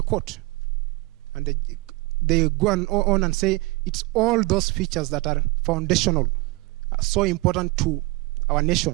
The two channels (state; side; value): quieter; left; 22.9 dB